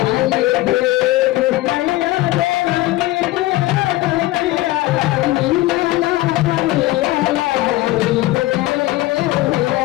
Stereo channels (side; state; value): right; quieter; 17.7 dB